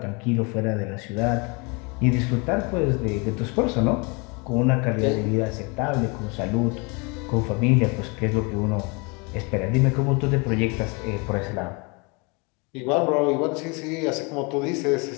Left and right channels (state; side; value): quieter; right; 30.3 dB